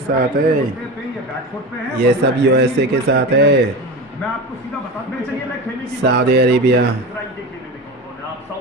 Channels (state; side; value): normal; both; correlation 0.27